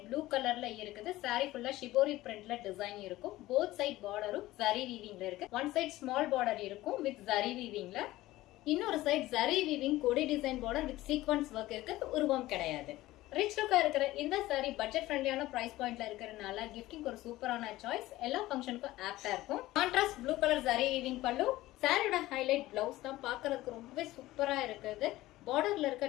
blue கலர்ல இருக்குது. saree ஃபுல்லா ஷிபோரி பிரிண்ட்ல டிசைன் இருக்கும். போத் சைட் பார்டரும் ஜரி வீவிங்ல இருக்கு. ஒன் சைட் ஸ்மால் பார்டர் இருக்கும் வித் ஜரி வீவிங்ல. இன்னொரு சைட் ஜரி வீவிங் கொடி design border with sequins work இருக்கு. உருவம் கிடையாது. ரிச் லுக்கா இருக்கிற இந்த saree பட்ஜெட் ஃப்ரெண்ட்லியான பிரைஸ் பாயிண்ட்ல இருக்கிறதுனால கிஃப்டிங் ஒரு சூப்பரான சாய்ஸ். எல்லா ஃபங்க்ஷனுக்கும் ஆப்டா இருக்கும். Contrast blue colour zari weaving பல்லு. சாரியோட ஹைலைட் பிளவுஸ் தான் பார்க்கிறதுக்கு ரொம்பவே சூப்பரா இருக்குது. பார்டர்ல இருக்க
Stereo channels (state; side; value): quieter; right; 17.0 dB